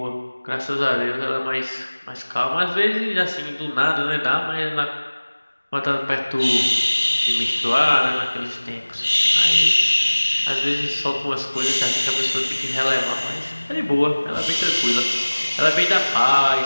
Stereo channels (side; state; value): both; inverted; correlation -1.00